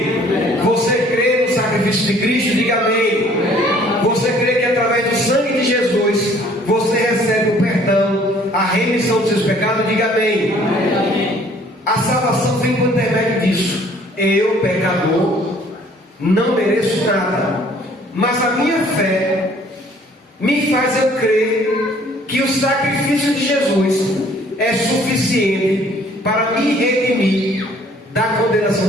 Você crê no sacrifício de Cristo? Diga amém. Você crê que através do sangue de Jesus você recebe o perdão, a remissão dos seus pecados? Diga amém. A salvação vem por intermédio disso. Eu, pecador, não mereço nada, mas a minha fé me faz eu crer que o sacrifício de Jesus é suficiente para me redimir da condenação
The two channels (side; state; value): both; normal; correlation 0.57